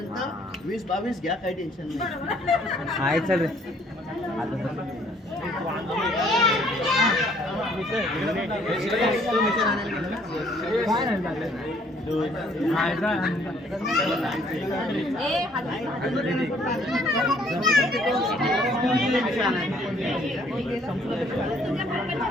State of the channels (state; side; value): normal; both; correlation 0.62